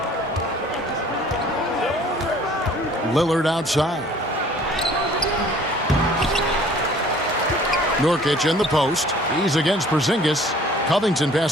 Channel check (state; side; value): normal; both; correlation 0.53